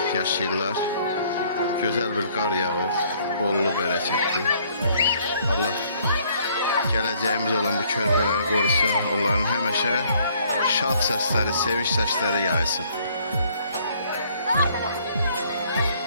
yaşayırlar. Gözəl bir qar yağır, bollu bərəkətli. Allah gələcəyimiz olan bu körpələri qorusun, onların həmişə şad səsləri, sevinç səsləri yaysın.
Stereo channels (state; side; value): inverted; both; correlation -0.63